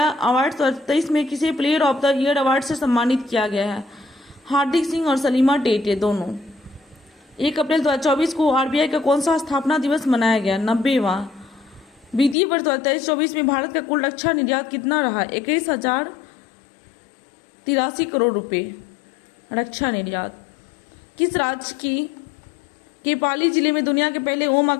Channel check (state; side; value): drops out; right; at 12.4 s